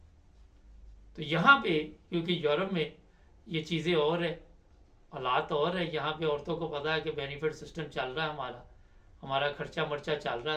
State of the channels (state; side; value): identical; both; correlation 1.00